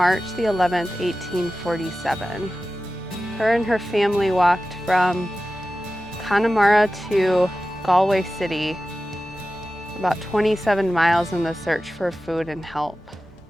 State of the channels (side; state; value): both; normal; correlation 0.94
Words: the 11th, 1847. Her and her family walked from Connemara to Galway City, about 27 miles in the search for food and help.